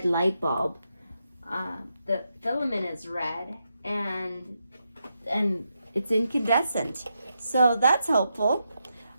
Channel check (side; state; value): both; inverted; correlation -0.84